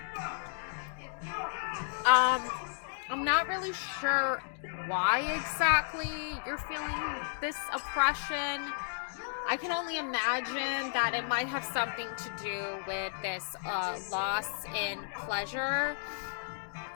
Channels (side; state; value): right; silent; digital silence